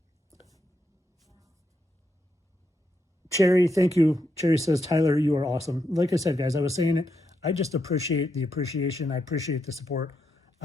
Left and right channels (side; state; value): both; normal; correlation 0.81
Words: Cherry, thank you. Cherry says, Tyler, you are awesome. Like I said, guys, I was saying it. I just appreciate the appreciation. I appreciate the support.